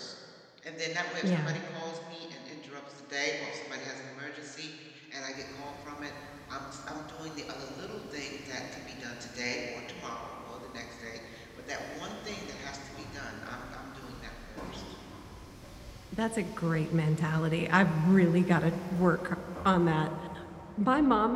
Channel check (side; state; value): both; identical; correlation 1.00